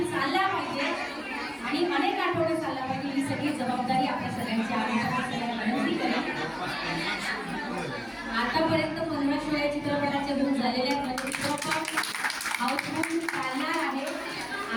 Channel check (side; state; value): both; identical; correlation 1.00